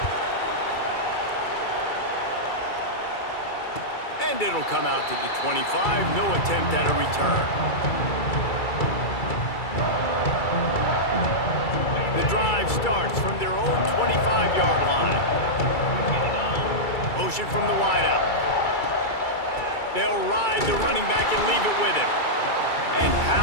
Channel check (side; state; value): right; late; 2.3 ms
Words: And it'll come out to the 25. No attempt at a return. The drive starts from their own 25-yard line. Motion from the wideout. They'll ride the running back and leave it with him. And